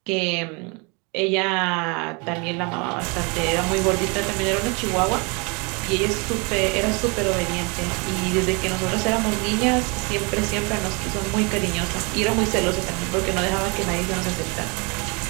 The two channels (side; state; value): left; quieter; 30.9 dB